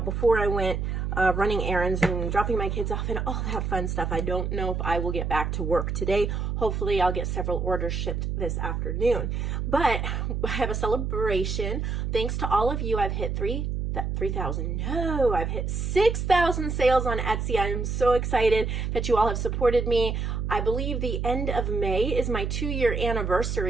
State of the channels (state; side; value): noise; right; hum, 2 dB below the sound